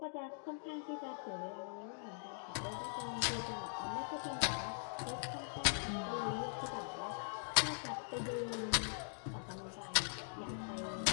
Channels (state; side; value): silent; right; digital silence